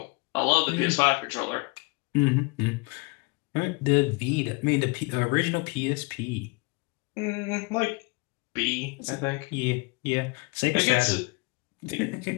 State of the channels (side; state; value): right; quieter; 28.1 dB